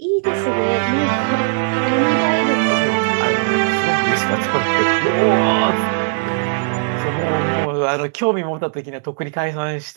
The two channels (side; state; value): left; silent; digital silence